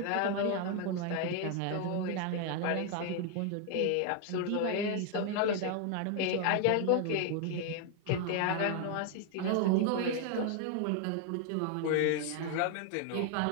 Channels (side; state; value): both; different; correlation 0.00